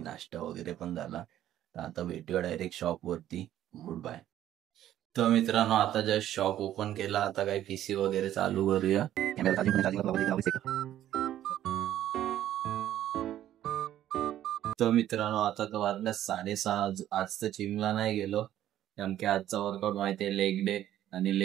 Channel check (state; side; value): quieter; left; 12.2 dB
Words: नाश्ता वगैरे पण झाला। तर आता भेटूया डायरेक्ट शॉप वरती। Good bye. तर मित्रांनो आता जस्ट शॉप ओपन केला, आता काय पीसी वगैरे चालू करूया। तर मित्रांनो आता तर वाजल्या 6:30। आज तर जिमला नाही गेलो, कारण की आजचा वर्कआउट माहितीये लेग डे, आणि